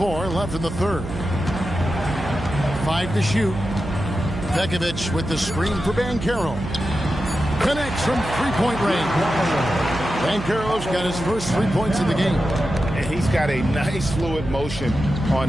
left in the third. 5 to shoot. Pekovic with the screen for Banchero. Connects from three-point range. Banchero's got his first 3 points of the game. And he's got a nice fluid motion on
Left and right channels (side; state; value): right; noise; hum, 9 dB below the sound